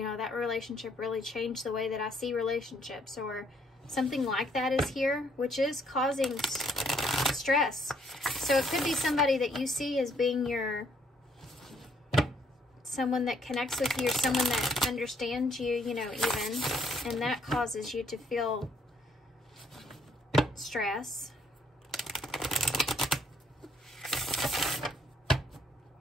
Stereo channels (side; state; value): both; normal; correlation 0.67